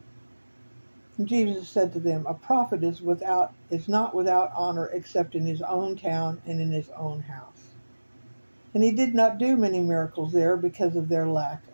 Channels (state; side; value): inverted; both; correlation -1.00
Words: And Jesus said to them, A prophet is not without honor except in his own town and in his own house. And he did not do many miracles there because of their lack